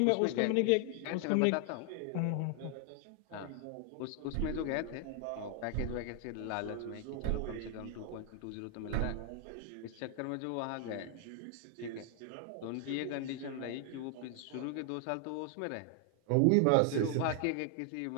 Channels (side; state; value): both; different; correlation 0.00